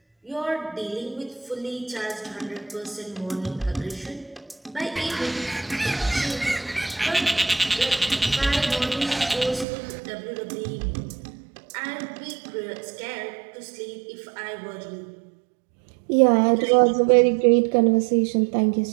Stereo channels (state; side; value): drops out; left; at 9.7 s